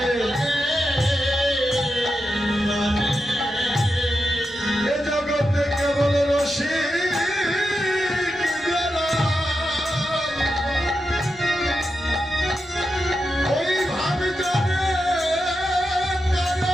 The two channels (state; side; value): normal; both; correlation 0.88